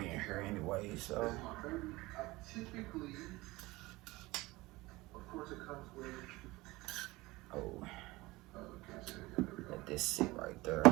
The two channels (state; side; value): quieter; left; 20.8 dB